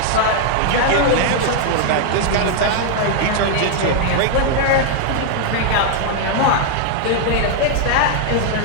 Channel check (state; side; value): different; both; correlation 0.00